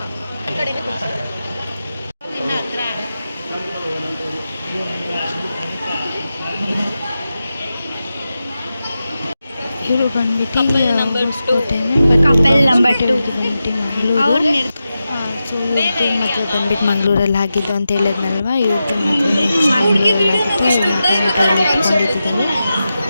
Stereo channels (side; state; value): both; inverted; correlation -0.91